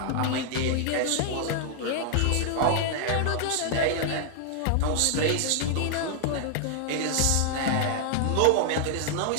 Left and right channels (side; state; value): both; different; correlation 0.00